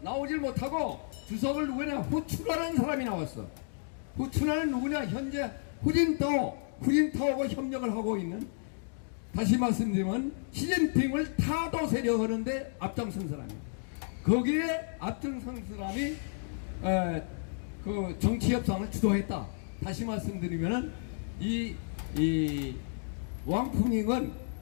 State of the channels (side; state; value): right; silent; digital silence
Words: 나오질 못하고 주석을 누구냐 후춘하는 사람이 나왔어. 후춘하는 누구냐 현재 후진타오하고 협력을 하고 있는, 다시 말씀드리면 시진핑을 타도 세력하는데 앞장선 사람이에요. 거기에 앞장선 사람이 그 정치협상을 주도했다. 다시 말씀드리면은 이 왕푸닝은